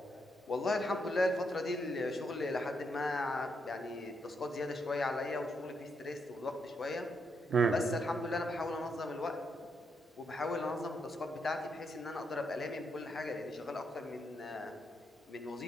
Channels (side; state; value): both; normal; correlation 0.79